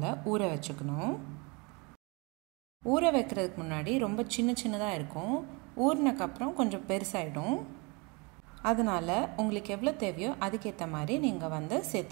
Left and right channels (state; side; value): quieter; left; 29.2 dB